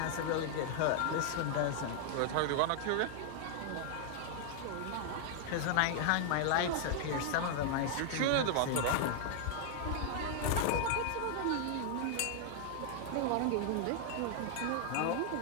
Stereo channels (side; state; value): both; different; correlation 0.00